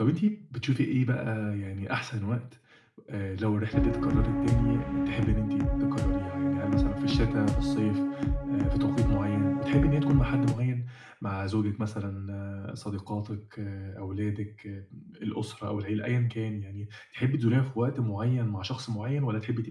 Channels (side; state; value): both; identical; correlation 1.00